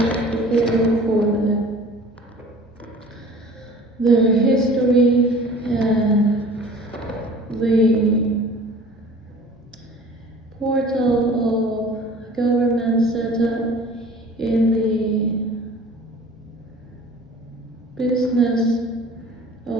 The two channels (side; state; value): both; normal; correlation 0.45